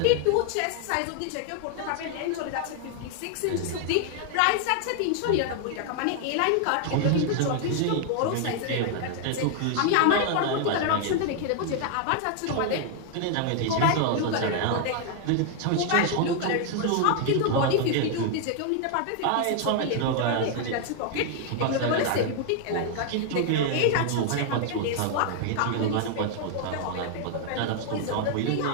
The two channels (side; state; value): both; different; correlation 0.00